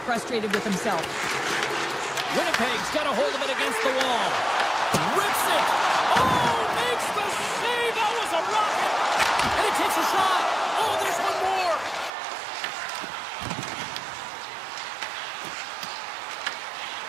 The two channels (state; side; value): drops out; left; at 12.1 s